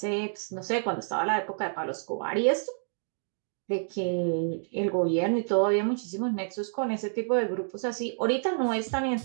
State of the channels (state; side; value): silent; left; digital silence